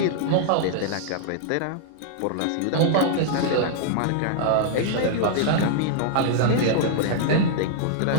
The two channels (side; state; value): both; different; correlation -0.01